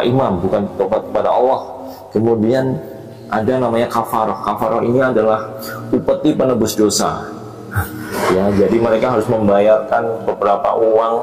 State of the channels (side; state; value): both; identical; correlation 1.00